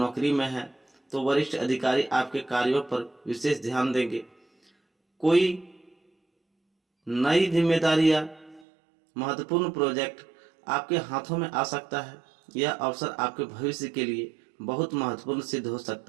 में हैं तो वरिष्ठ अधिकारी आपके कार्यों पर विशेष ध्यान देंगे। कोई नई जिम्मेदारी या महत्वपूर्ण प्रोजेक्ट आपके हाथों में आ सकता है। यह अवसर आपके भविष्य के लिए बहुत महत्वपूर्ण सिद्ध हो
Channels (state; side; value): drops out; left; at 8.7 s